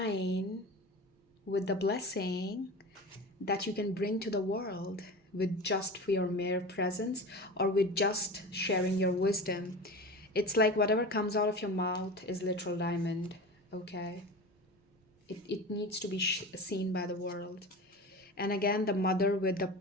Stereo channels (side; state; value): both; normal; correlation 0.31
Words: with the blessing that you can bring to the world with just for your mere presence or with just sharing your wisdom. It's like whatever comes out of your mouth is literal diamond, okay? It needs to be seen by the world. And again, the mother with the